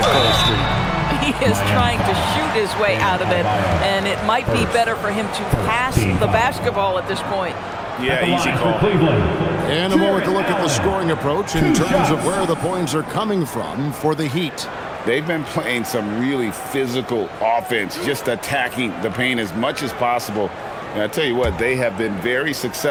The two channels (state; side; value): identical; both; correlation 1.00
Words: cold streak. He is trying to shoot his way out of it, and it might be better for him to pass the basketball at this point. Yeah, easy call. And a moment to look at the scoring approach in terms of where the points are coming from for the Heat. They've been playing some really physical offense, just attacking the paint as much as possible. And I tell you what, they have been very